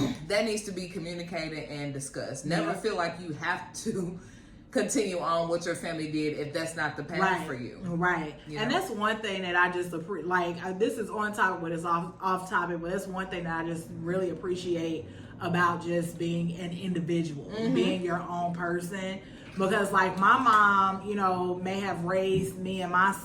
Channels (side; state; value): both; identical; correlation 1.00